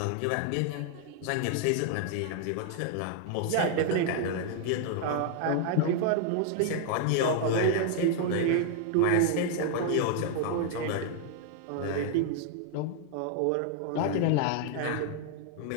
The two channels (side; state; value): both; different; correlation 0.00